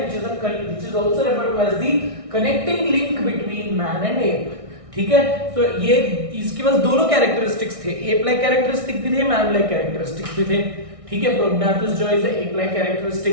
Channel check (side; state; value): left; late; 1.6 ms